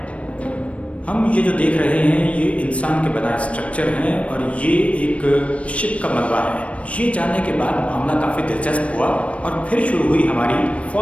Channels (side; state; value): right; late; 0.063 ms